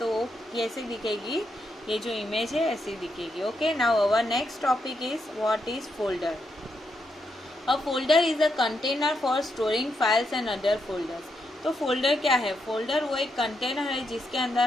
वो कैसे दिखेगी? ये जो इमेज है ऐसी दिखेगी. Okay, now our next topic is what is folder. A folder is a container for storing files and other folders. तो फोल्डर क्या है? फोल्डर वो एक कंटेनर है जिसके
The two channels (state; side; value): normal; both; correlation 0.81